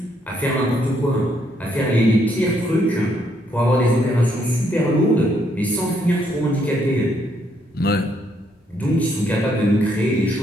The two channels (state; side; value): normal; both; correlation 0.73